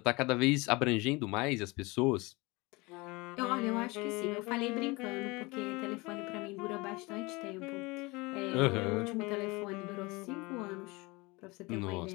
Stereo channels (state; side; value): quieter; right; 24.6 dB